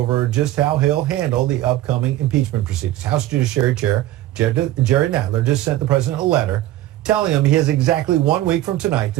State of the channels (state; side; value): quieter; left; 14.9 dB